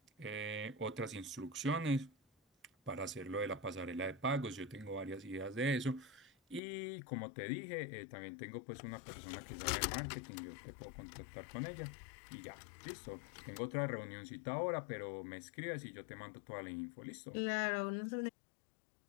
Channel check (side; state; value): right; drops out; at 6.6 s